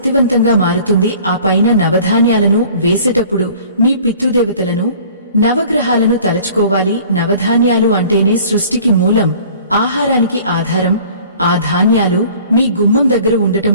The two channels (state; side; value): inverted; both; correlation -0.49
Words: మారుతుంది. ఆ పైన నవధాన్యాలను వేసేటప్పుడు మీ పితృదేవతలను, నవగ్రహాలను తలచుకోవాలి. నవధాన్యాలు అంటేనే సృష్టికి మూలం, ఆహారానికి ఆధారం. ఆ ధాన్యాలు మీ గుమ్మం దగ్గర ఉండటం